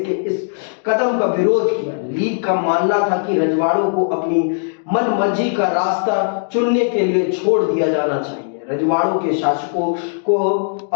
के इस कदम का विरोध किया। लीग का मानना था कि रजवाड़ों को अपनी मनमर्जी का रास्ता चुनने के लिए छोड़ दिया जाना चाहिए। रजवाड़ों के शासकों को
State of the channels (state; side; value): silent; right; digital silence